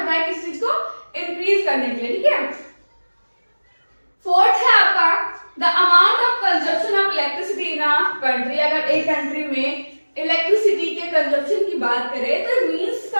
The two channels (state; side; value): inverted; both; correlation -1.00